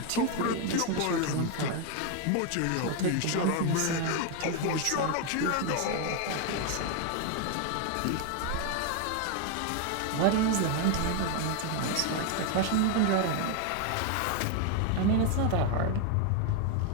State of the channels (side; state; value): both; different; correlation 0.01